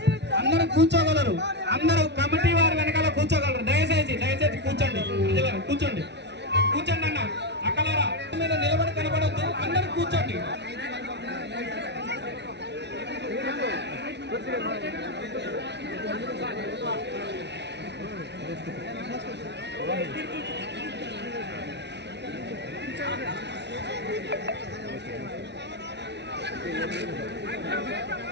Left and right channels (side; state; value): left; late; 0.50 ms